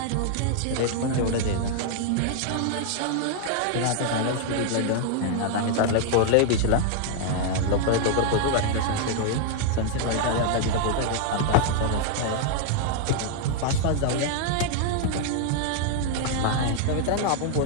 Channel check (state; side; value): different; both; correlation 0.00